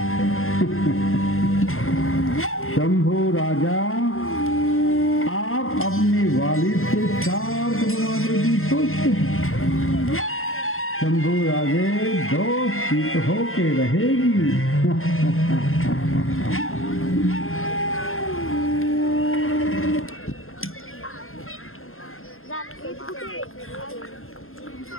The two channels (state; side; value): late; right; 0.61 ms